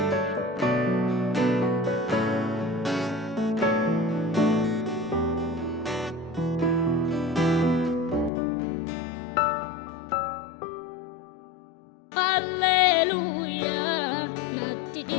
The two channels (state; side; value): drops out; right; at 8.3 s